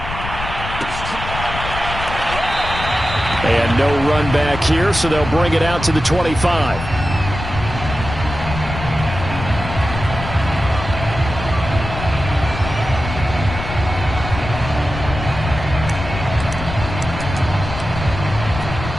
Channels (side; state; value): left; noise; rumble, 7 dB below the sound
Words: And no run back here, so they'll bring it out to the 25.